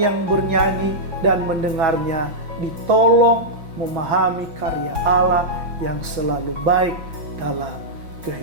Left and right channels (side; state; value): left; late; 5.7 ms